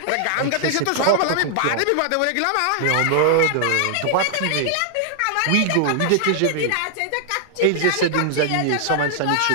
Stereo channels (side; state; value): both; different; correlation -0.01